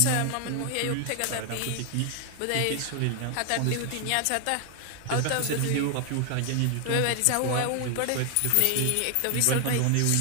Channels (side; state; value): both; different; correlation 0.00